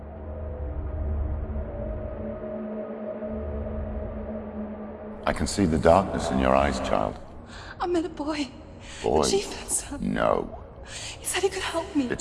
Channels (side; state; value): both; identical; correlation 1.00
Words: I can see the darkness in your eyes, child. I met a boy. Boy. The chief had son. No. He said he could help me.